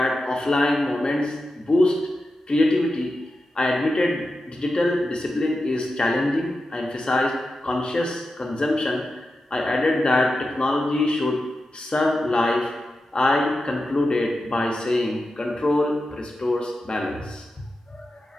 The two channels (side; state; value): both; normal; correlation 0.91